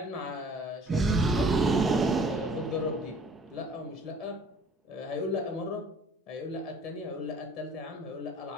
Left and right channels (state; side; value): normal; both; correlation 0.52